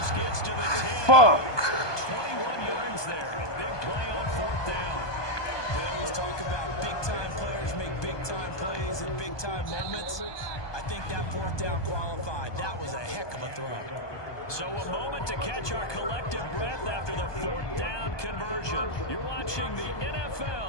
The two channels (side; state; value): right; late; 1.2 ms